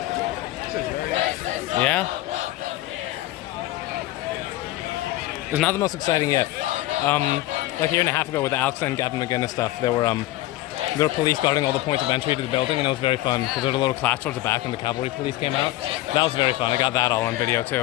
Yeah? It's not the most exciting yet. Like a year and a half ago with the Alex and Gavin McGinnis stuff, there were police guarding all the points of entry to the building, and it was very fun because there was a little clash towards the back and the cavalry police came out. That was very fun. I got that all on video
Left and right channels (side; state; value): right; quieter; 16.5 dB